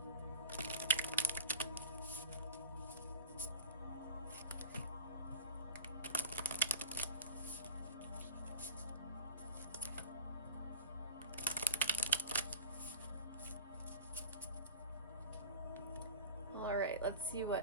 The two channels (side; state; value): both; inverted; correlation -0.30